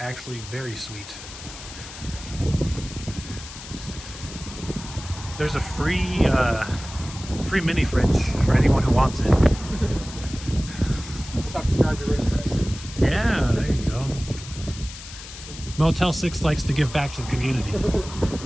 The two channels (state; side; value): noise; left; hiss, 14 dB below the sound